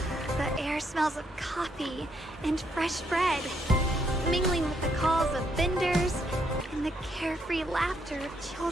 The air smells of coffee and fresh bread, mingling with the calls of vendors and the carefree laughter of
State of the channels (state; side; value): normal; both; correlation 0.74